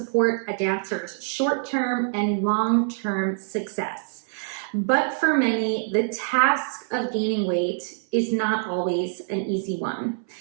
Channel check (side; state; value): left; silent; 60 dB below the other